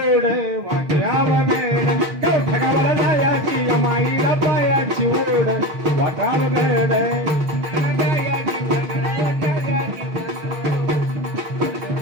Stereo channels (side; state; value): left; late; 6.4 ms